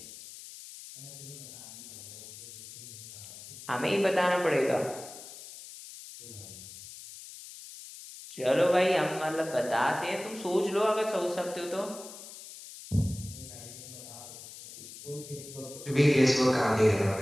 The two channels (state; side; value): noise; left; hiss, 14 dB below the sound